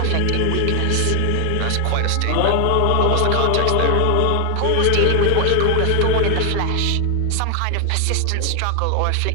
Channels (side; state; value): both; different; correlation 0.01